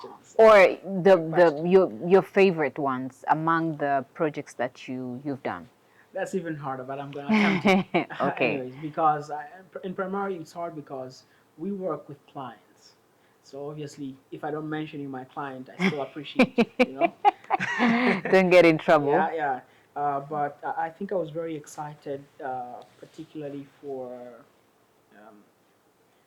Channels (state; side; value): identical; both; correlation 1.00